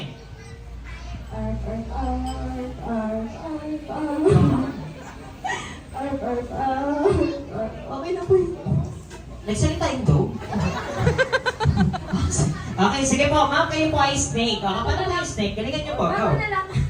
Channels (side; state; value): both; identical; correlation 1.00